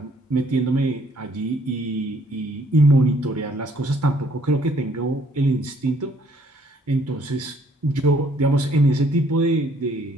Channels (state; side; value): normal; both; correlation 0.64